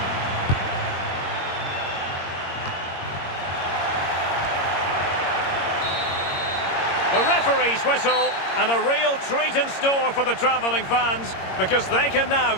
The ref referee's whistle, and a real treat in store for the travelling fans, because they can now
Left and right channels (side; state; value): right; late; 22 ms